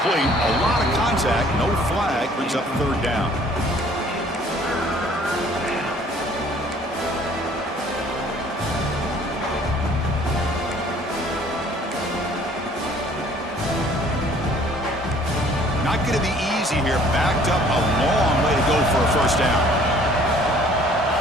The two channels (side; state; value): both; normal; correlation 0.56